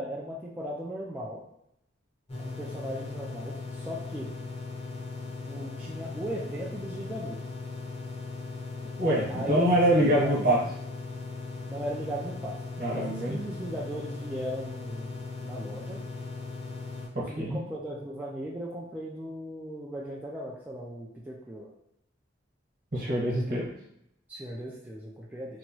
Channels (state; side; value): normal; both; correlation 0.42